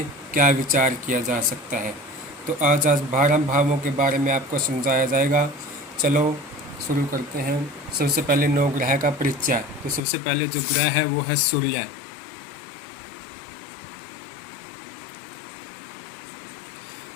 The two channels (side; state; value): right; drops out; at 10.0 s